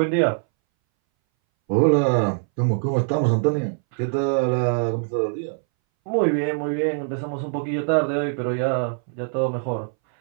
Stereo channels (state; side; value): silent; left; 62 dB below the other